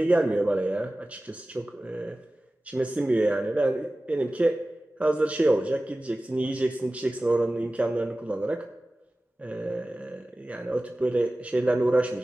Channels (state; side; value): normal; both; correlation 0.96